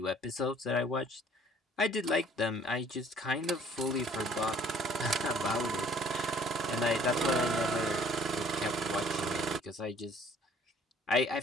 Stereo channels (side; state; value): both; normal; correlation 0.56